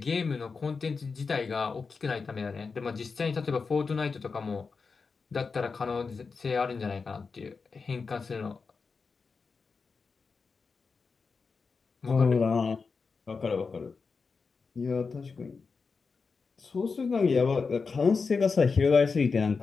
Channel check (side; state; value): right; quieter; 4.8 dB